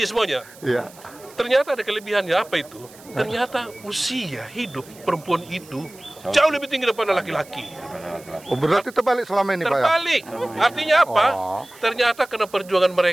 semuanya. Ternyata ada kelebihannya, apa itu? Ternyata usia hidup perempuan itu jauh lebih tinggi daripada laki-laki. Oh, berarti terbalik selama ini Pak ya? Terbalik. Artinya apa? Ternyata karena perjuangan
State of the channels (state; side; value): noise; right; hiss, 22 dB below the sound